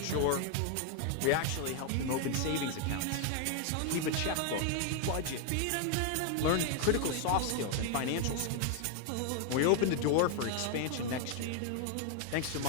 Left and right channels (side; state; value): both; different; correlation 0.00